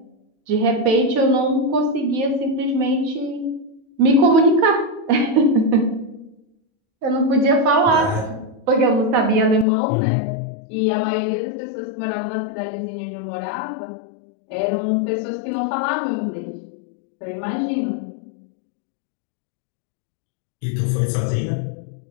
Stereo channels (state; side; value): drops out; right; at 9.7 s